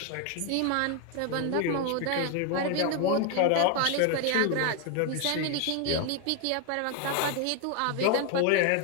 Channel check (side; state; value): both; different; correlation 0.01